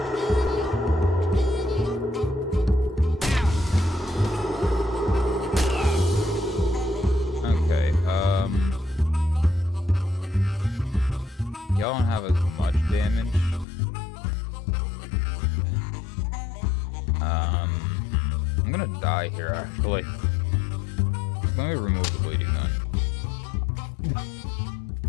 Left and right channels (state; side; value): drops out; right; at 13.7 s